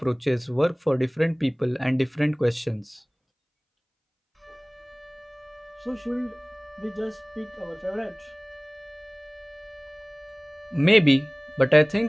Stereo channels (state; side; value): identical; both; correlation 1.00